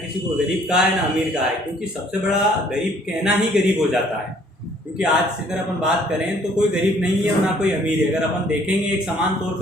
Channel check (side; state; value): both; normal; correlation 0.60